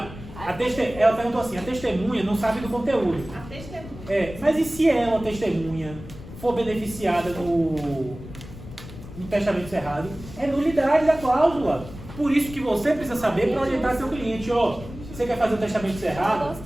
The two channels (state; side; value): noise; left; rumble, 14 dB below the sound